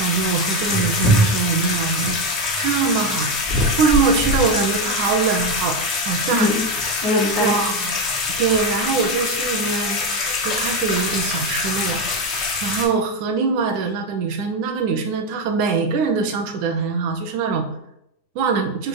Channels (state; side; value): late; left; 9.6 ms